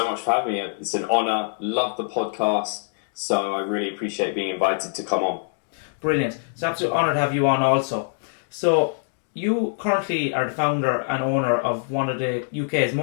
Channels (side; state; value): right; silent; digital silence